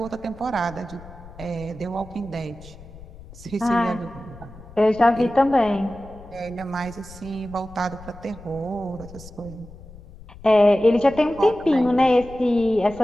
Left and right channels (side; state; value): left; noise; rumble, 18 dB below the sound